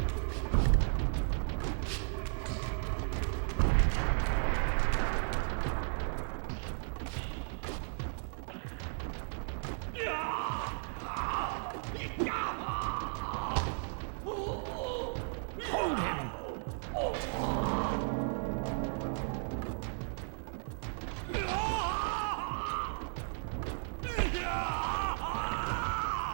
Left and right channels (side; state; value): left; silent; 54 dB below the other